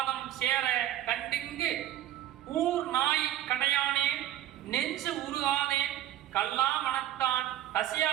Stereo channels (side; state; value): left; quieter; 12.6 dB